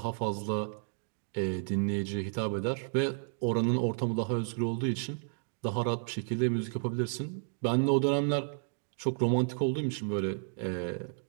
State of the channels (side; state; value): left; silent; digital silence